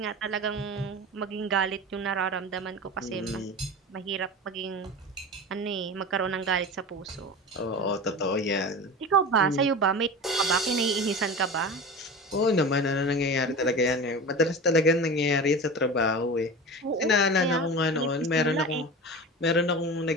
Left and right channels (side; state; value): both; normal; correlation 0.30